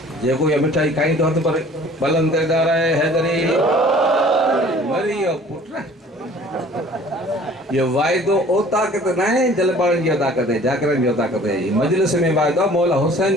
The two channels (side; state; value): both; normal; correlation 0.50